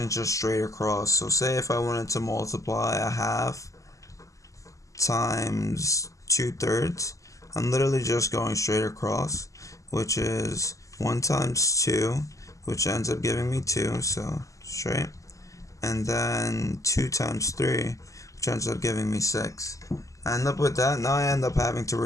just straight across. So say if I wanted to multiply a half times 2/3, I'm literally just going straight across, which is 1 times 2, which ends up giving me 2, so straight, and then 2 times 3, which ends up giving me 6. I end up with that. Now I end up having to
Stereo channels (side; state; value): right; late; 0.16 ms